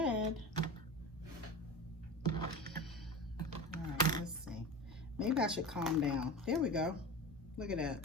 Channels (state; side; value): normal; both; correlation 0.29